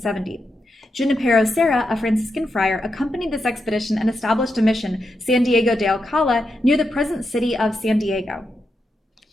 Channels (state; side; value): normal; both; correlation 0.85